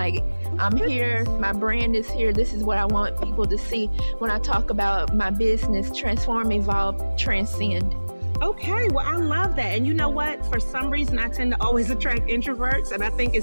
I'm here, my brand is here. This is what I want people to see when I talk about my business: transform, evolve, transcend. Okay, well, I love that. And you know what? For some reason, I tend to always attract introverts. And I think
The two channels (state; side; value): inverted; both; correlation -1.00